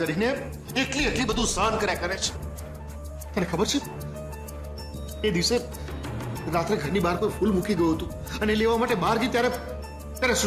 એટલી બધું સહન કર્યા કરે છે. તને ખબર છે એ દિવસે રાત્રે ઘરની બહાર કોઈ ફૂલ મૂકી ગયું હતું અને લેવા માટે બહાર ગઈ ત્યારે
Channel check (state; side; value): identical; both; correlation 1.00